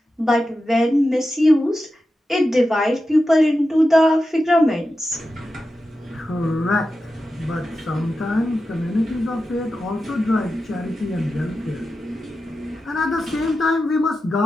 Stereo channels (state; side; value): normal; both; correlation 0.91